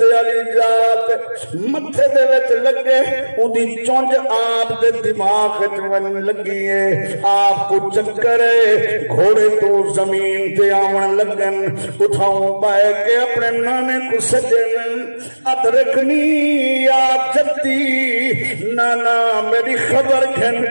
علی جات متھے دے وچ لگے اودی چونج آپ دے دماغ وچ ون لگی ہے آپ کو چکر ہے گھوڑے تو زمین تے آون لگن اٹھاؤں پائے کہ اپنے نانے کو سجن ادرکنی یا جدی نانا میری خبر خبر کھن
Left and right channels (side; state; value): both; inverted; correlation -1.00